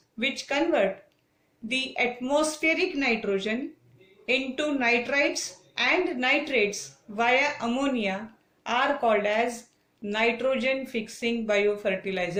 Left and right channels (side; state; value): both; identical; correlation 1.00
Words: which convert the atmospheric nitrogen into nitrites and nitrates via ammonia are called as nitrogen fixing